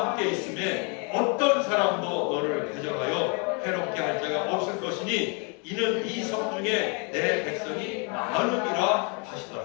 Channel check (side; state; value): right; quieter; 35.0 dB